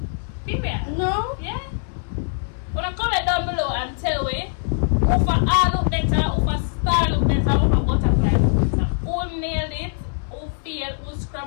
Period. No? Yeah. When I comment down below and tell me who for art look better, who for star look better, who for butterfly look better. Who nailed it, who failed, who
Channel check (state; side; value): silent; right; 64 dB below the other